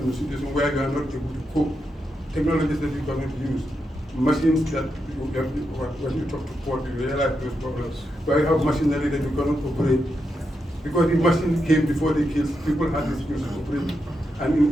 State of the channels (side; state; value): both; normal; correlation 0.85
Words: in a situation where you are not able to cope. Technologies that you cannot use, machines that when you talk to port, you realize those problems, where you have machinery that you cannot operate. Because the machine came before the kids, people had the skills to operate. And